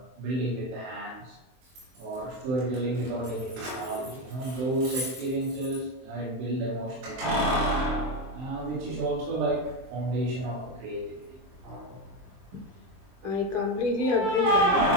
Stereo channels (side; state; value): left; late; 23 ms